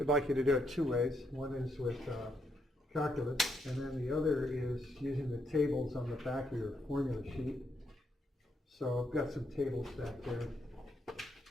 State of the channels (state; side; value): normal; both; correlation 0.77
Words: like you to do it two ways. One is with calculus, and then the other is using the tables on the back of your formula sheet. So I've got some tables back there.